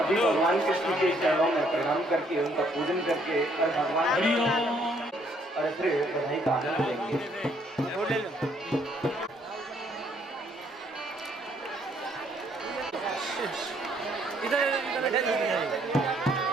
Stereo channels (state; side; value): normal; both; correlation 0.67